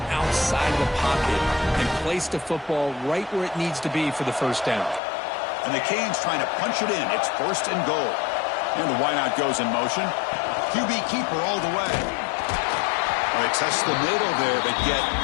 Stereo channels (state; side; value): drops out; right; at 5.0 s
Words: outside the pocket and place the football right where it needs to be for the 1st down. And the Canes trying to punch it in. It's 1st and goal. And the wideout goes in motion. QB keeper all the way. They test the middle there, but get